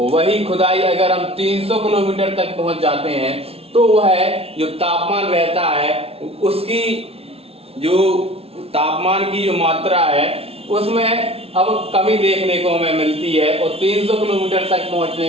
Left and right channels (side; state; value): left; late; 0.29 ms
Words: खुदाई अगर हम 300 किलोमीटर तक पहुंच जाते हैं तो वह जो तापमान रहता है उसकी जो तापमान की जो मात्रा है उसमें अब कमी देखने को हमें मिलती है। और 300 किलोमीटर तक